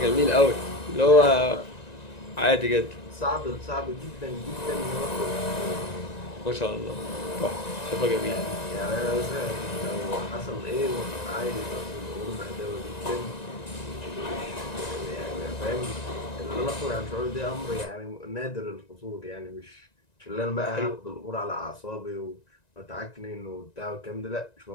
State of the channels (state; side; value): late; right; 1.9 ms